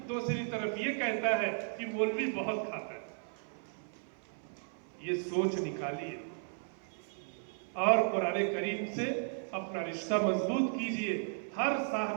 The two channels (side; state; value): left; silent; 54 dB below the other